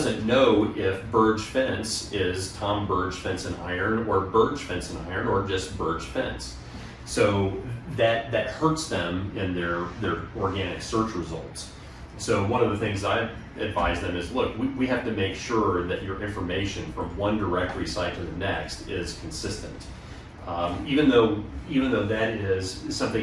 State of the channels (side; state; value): both; identical; correlation 1.00